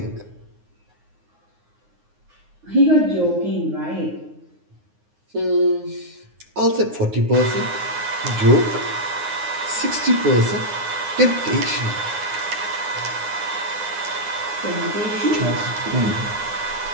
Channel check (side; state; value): left; late; 9.6 ms